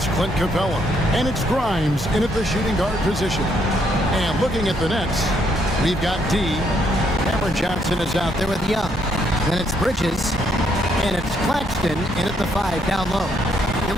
It's Clint Capella, and it's Grimes in at the shooting guard position. And looking at the nets, we've got D. Cameron Johnson is out there with Young. Then it's Bridges, and it's Claxton in at the 5 down low. You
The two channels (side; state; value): both; normal; correlation 0.72